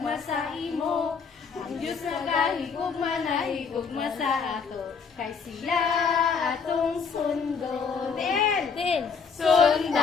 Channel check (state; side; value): quieter; right; 5.7 dB